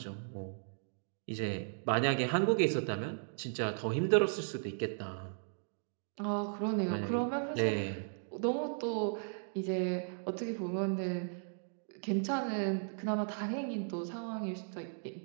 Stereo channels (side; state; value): left; silent; digital silence